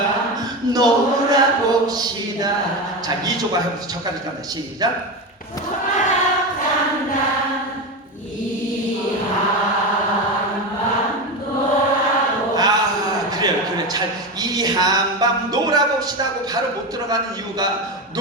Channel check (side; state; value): both; normal; correlation 0.19